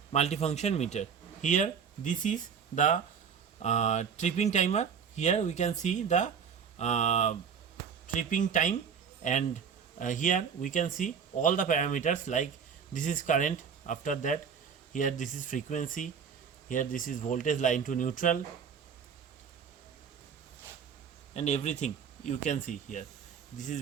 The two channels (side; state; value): left; quieter; 6.9 dB